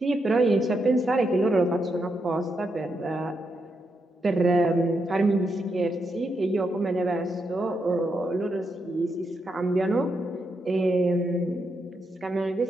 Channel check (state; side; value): normal; both; correlation 0.82